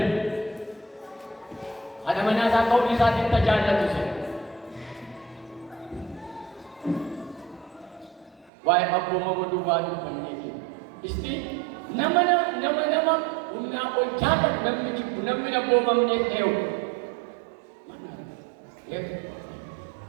haadha manaa isaa ta'uu isaatiin tajaajilatu se waa'ee abboomama duwwaa dubbanneeti isti nama humnaa ol jaallatu namni jibbu namni abboomamneef ta'u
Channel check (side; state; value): left; drops out; at 8.5 s